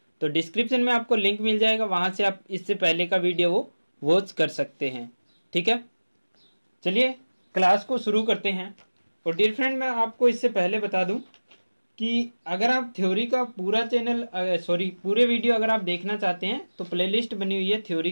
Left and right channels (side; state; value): both; inverted; correlation -1.00